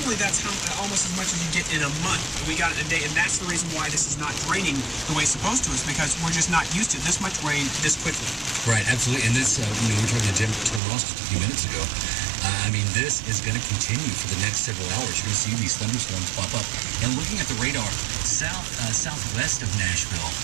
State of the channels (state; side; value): drops out; left; at 10.8 s